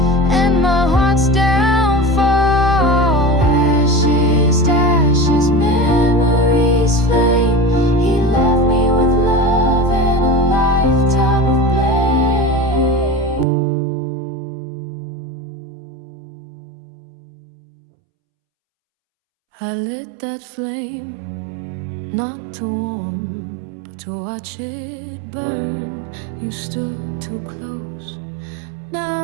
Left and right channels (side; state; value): left; drops out; at 13.5 s